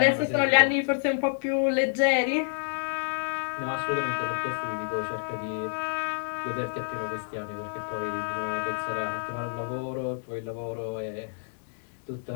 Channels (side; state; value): right; silent; digital silence